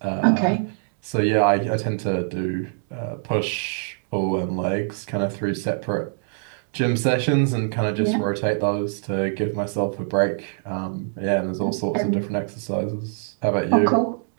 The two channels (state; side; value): silent; left; digital silence